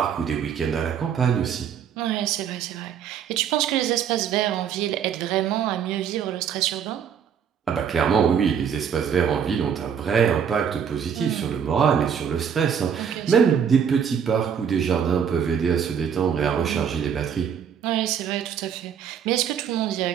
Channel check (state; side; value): quieter; left; 7.8 dB